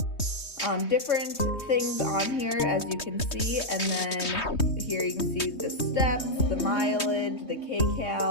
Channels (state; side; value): late; right; 3.2 ms